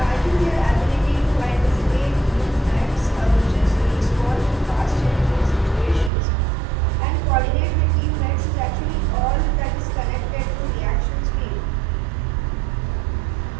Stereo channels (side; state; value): left; drops out; at 6.1 s